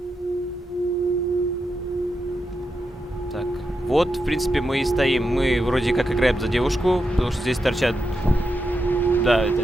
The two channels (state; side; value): normal; both; correlation 0.86